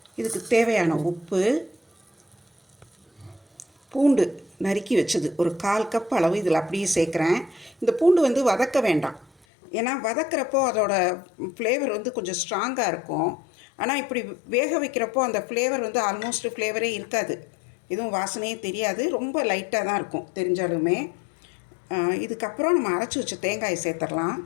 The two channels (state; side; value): drops out; right; at 9.3 s